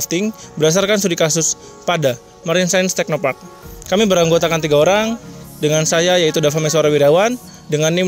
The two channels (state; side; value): identical; both; correlation 1.00